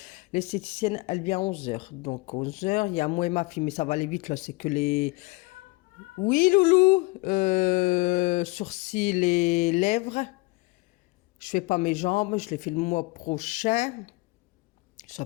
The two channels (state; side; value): quieter; right; 24.2 dB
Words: L'esthéticienne, elle vient à 11h. Donc 11h, il y a moi et ma fille, mais ça va aller vite, là, c'est que les... Oui, Loulou, sourcils et lèvres. Je fais pas mes jambes, je les fais le mois prochain. Ça